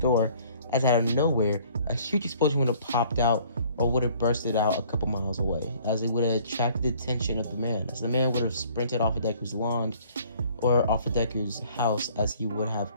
as out of nowhere, a huge explosion would have popped out or would have bursted out a couple miles away, as it would have attracted the attention of the man, as the man would have sprinted off of Deku's lawn or off of Deku's house, as he would have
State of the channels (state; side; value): inverted; both; correlation -0.56